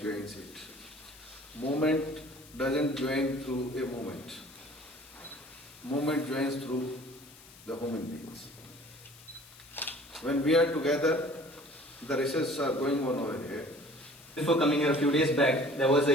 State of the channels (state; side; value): noise; left; hiss, 21 dB below the sound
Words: joins it? Movement doesn't join through a movement. Movement joins through the human beings. When we are together, the research are going on over here. Before coming here a few days back, there was